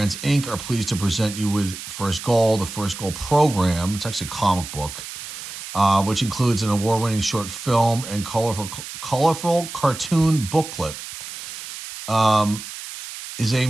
Inc. are pleased to present you with First Goal, the First Goal program. It's actually a comic book, which includes an award-winning short film and colorful cartoon booklet. Is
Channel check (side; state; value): right; noise; hiss, 10 dB below the sound